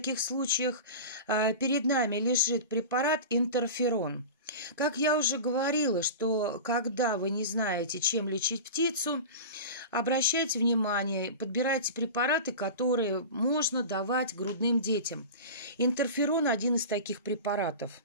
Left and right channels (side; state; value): both; inverted; correlation -0.31